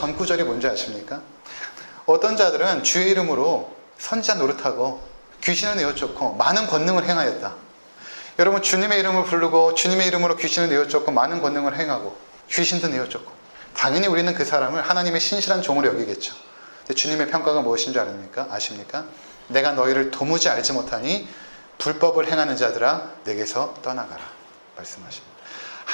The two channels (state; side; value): inverted; both; correlation -1.00